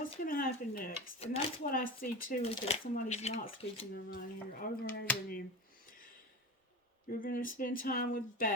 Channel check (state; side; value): normal; both; correlation 0.28